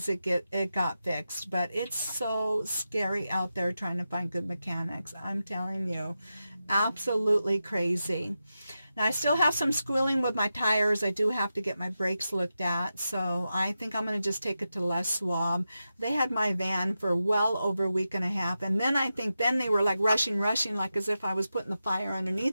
it got fixed. But it's so scary out there trying to find good mechanics. I'm telling you, absolutely crazy. Now I still have some squealing with my tires. I do have to get my brakes looked at, so I think I'm going to just take it to Les Schwab. They had my van for well over a week and a half, and then I think then they were like rushing, like as if I was putting the fire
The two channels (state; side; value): inverted; both; correlation -0.90